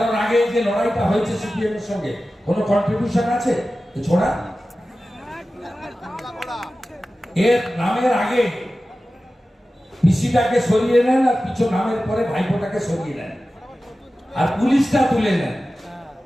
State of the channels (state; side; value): normal; both; correlation 0.95